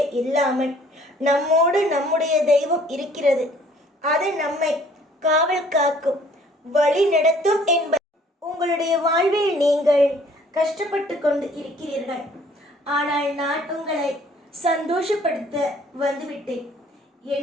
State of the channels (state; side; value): normal; both; correlation 0.57